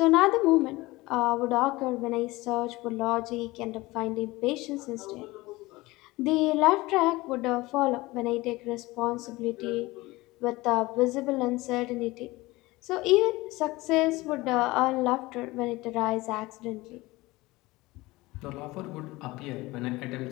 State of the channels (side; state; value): right; quieter; 20.6 dB